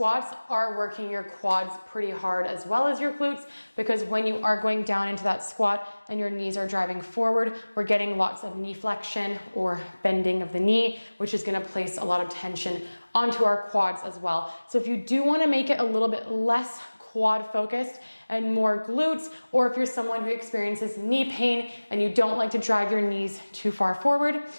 are working your quads pretty hard as well as your glutes, because when you are going down into that squat and your knees are driving forward, we're getting lots of knee flexion or bending of the knee, which is gonna place a lot of tension onto our quads as well. So if you do wanna make it a little bit less quad focused and more glutes, or if you're someone who experiences knee pain and you don't like to drive your knees too far forward,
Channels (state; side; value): inverted; both; correlation -1.00